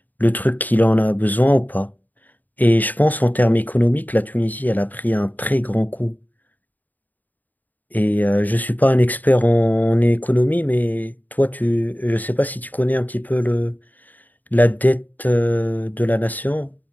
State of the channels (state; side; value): late; right; 0.083 ms